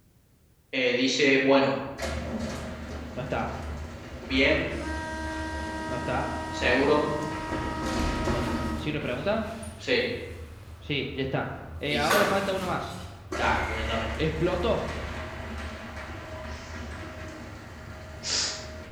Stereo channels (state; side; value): identical; both; correlation 1.00